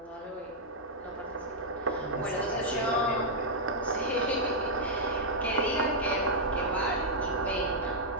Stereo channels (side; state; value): both; normal; correlation -0.07